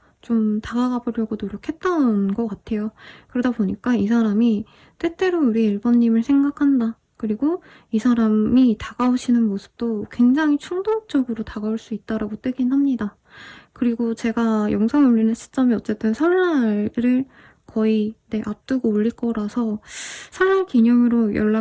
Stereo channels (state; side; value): identical; both; correlation 1.00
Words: 좀 다가가 보려고 노력했던 것 같아요. 그러다 보니까 이 사람이 때때로 우리 1번님을 생각한다. 그리고 이 사람이 다가오시는 모습도 굉장히 충동적으로 다가올 수 있다라고 뜨긴 합니다. 그리고 제가 영상 올리는 시점이 어쨌든 설날을 거의 앞두고 올릴 거라서 설날 기념으로